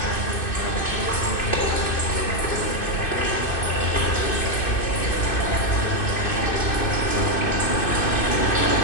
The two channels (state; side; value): late; right; 2.6 ms